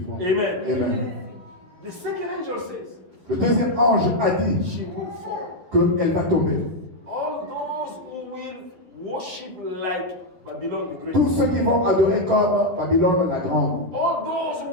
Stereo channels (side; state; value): left; late; 11 ms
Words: Amen. Amen. The second angel says, Le deuxième ange a dit she will fall. qu'elle va tomber. All those who will worship like Babylon the Great. Tous ceux qui vont adorer comme Babylone la Grande. All those who